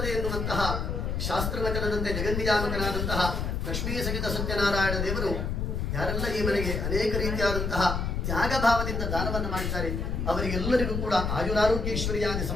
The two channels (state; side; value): noise; left; rumble, 1 dB below the sound